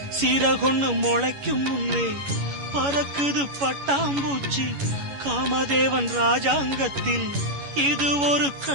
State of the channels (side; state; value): left; late; 11 ms